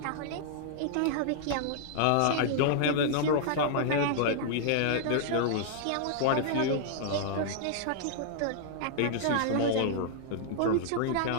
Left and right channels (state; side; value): different; both; correlation -0.01